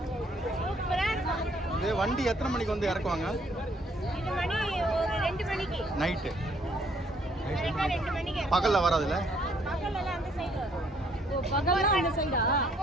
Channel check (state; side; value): normal; both; correlation 0.66